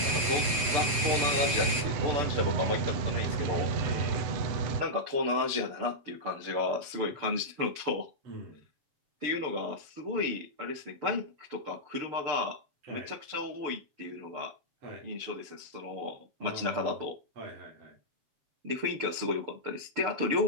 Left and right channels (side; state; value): left; late; 7.3 ms